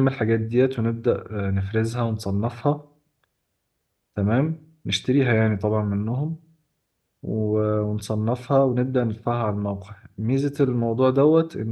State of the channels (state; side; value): identical; both; correlation 1.00